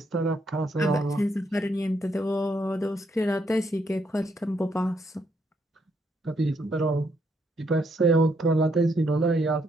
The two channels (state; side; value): normal; both; correlation 0.74